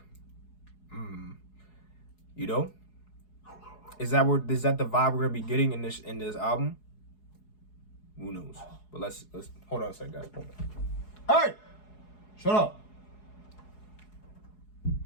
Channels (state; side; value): late; right; 4.7 ms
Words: you know, is that the vibe we're gonna be getting in this album? Who knows? But let's hold on a second, guys. Hold on. Hey, shut up.